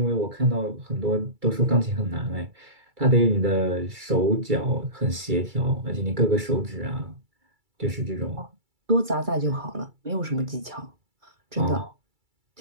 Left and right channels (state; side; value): late; left; 2.3 ms